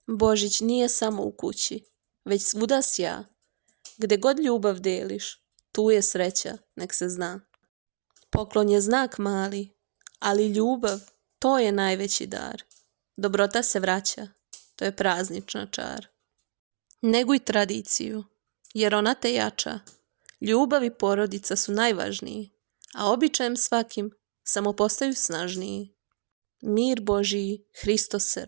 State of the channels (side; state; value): left; silent; digital silence